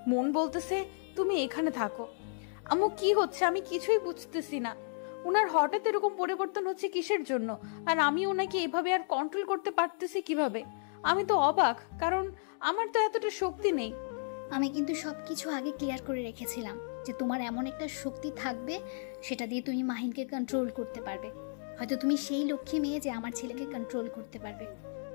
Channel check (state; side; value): silent; right; digital silence